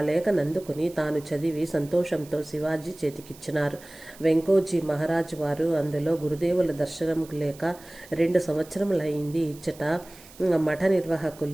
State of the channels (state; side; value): noise; right; hiss, 21 dB below the sound